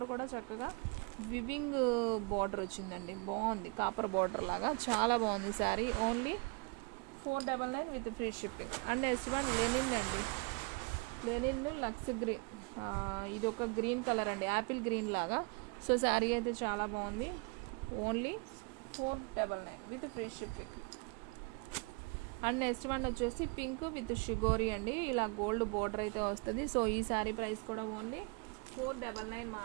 కూడా చక్కగా వివింగ్ బోర్డర్ వచ్చిందండి. బాగుంది, కాపర్ బోర్డర్ లాగా చాలా బాగుంది sari. Only 499 with free shipping. And next one linen అండి. లెనిన్ లక్స్ గ్రీన్, ఇది ఒక గ్రీన్ కలర్ అండి, యాపిల్ గ్రీన్ లాగా. సో శారీ అయితే చాలా బాగుంది. Only 499 with free shipping. And next one వచ్చేసి పింక్ విత్ షిగోరి అండి, ఇలా గోల్డ్ బోర్డర్ అయితే వస్తుంది. సో ఈ శారీ ప్రైస్ కూడా ఓన్లీ 499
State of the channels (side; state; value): left; quieter; 30.7 dB